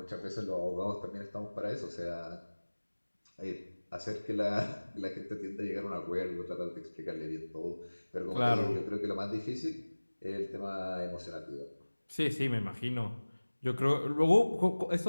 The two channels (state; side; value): inverted; both; correlation -1.00